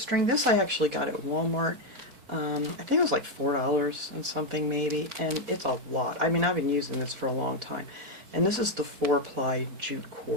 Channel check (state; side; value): late; left; 4.1 ms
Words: This I actually got at Walmart. I think it was like $4 and something maybe, and it's a lot. I mean, I've been using this for a long time. And this is the 4-ply jute